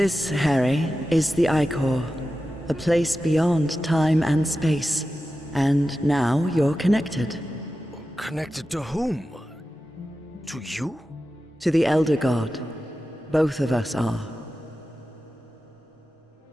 Harry, is the Icor, a place beyond time and space. And now you're connected. Connected to whom? To you? To the Elder God. Both of us are.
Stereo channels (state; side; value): normal; both; correlation 0.93